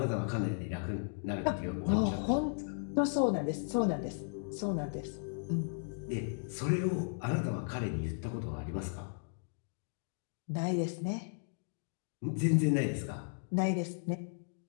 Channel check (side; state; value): right; silent; digital silence